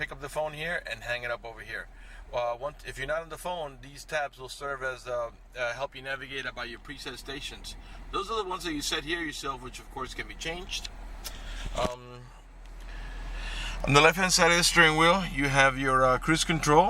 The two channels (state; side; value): identical; both; correlation 1.00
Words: up the phone here and hang it up over here. If you're not on the phone, these tabs will serve as help you navigate about your preset stations. Those are the ones that you set here yourself, which of course can be changed. On the left hand side of the steering wheel, you have your cruise